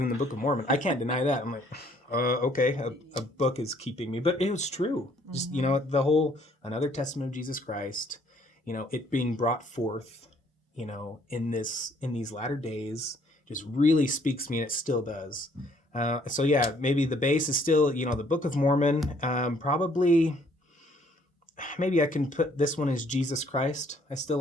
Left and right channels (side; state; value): both; normal; correlation 0.63